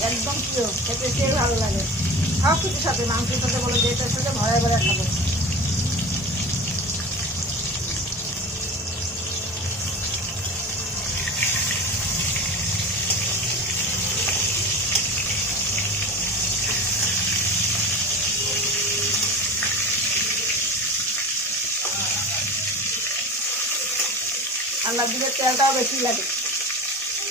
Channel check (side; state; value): both; normal; correlation 0.33